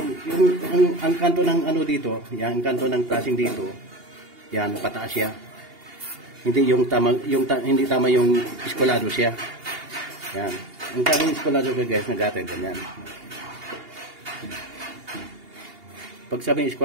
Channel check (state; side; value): late; left; 2.8 ms